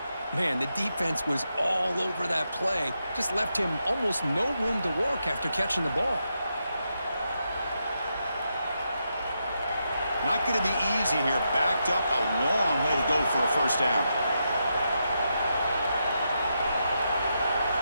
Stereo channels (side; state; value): both; inverted; correlation -0.84